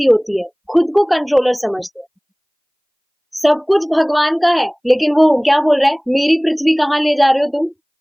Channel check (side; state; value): both; identical; correlation 1.00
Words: होती है, खुद को कंट्रोलर समझते हैं, सब कुछ भगवान का है, लेकिन वो क्या बोल रहा है, मेरी पृथ्वी कहाँ ले जा रहे हो तुम।